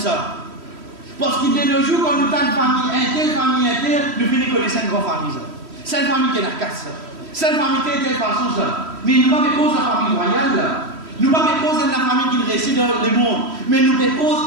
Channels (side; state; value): left; late; 3.1 ms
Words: Parce qu'il de nos jours, quand nous avons une famille interne, nous finissons connaître une grande famille. C'est une famille qui est la casse. C'est une famille qui est de telle façon. Mais nous ne pas cause de la famille royale. Nous ne pas cause de la famille qui réside dans le monde. Mais nous